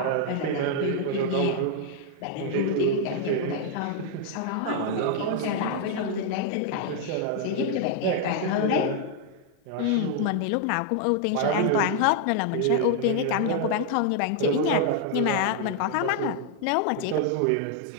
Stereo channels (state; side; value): different; both; correlation 0.00